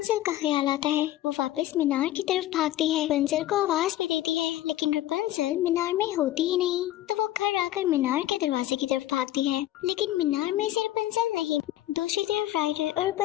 का ख्याल आता है। वो वापस मीनार की तरफ भागती है, रपुंज़ल को आवाज भी देती है, लेकिन रपुंज़ल मीनार में होती ही नहीं। तो वो घर आकर मीनार के दरवाजे की तरफ भागती है, लेकिन मीनार में से रपुंज़ल नहीं। दूसरी तरफ राइडर और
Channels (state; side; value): quieter; right; 14.3 dB